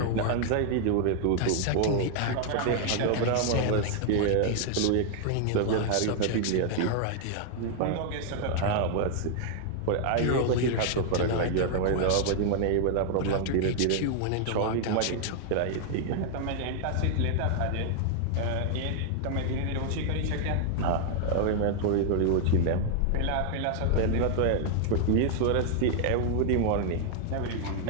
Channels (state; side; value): different; both; correlation 0.00